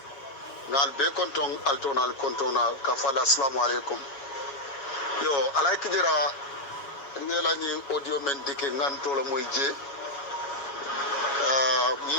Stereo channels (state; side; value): late; right; 7.2 ms